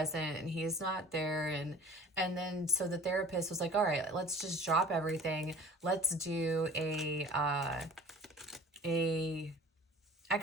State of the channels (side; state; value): both; normal; correlation 0.43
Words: and he is not there. And then so the therapist was like, all right, let's just drop everything. Let's do a